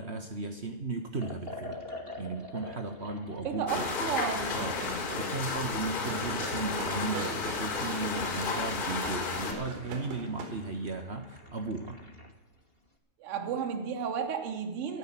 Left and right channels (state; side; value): late; left; 2.2 ms